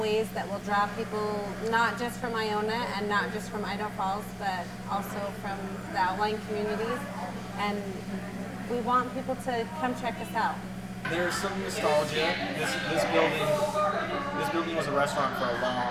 that will draw people not just from Iona and not just from Idaho Falls, but also from the outlying communities. And we want people to come check us out. There's some nostalgia. This building was a restaurant for a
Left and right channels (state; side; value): identical; both; correlation 1.00